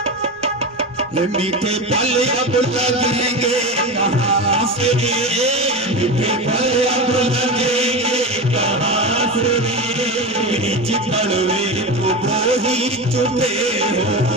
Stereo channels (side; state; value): right; noise; rumble, 30 dB below the sound